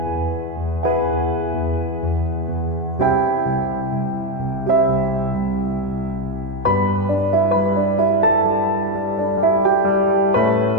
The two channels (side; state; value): both; normal; correlation 0.09